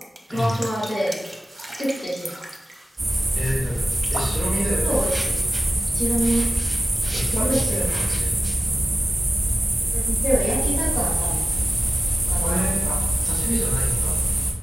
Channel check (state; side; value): normal; both; correlation 0.96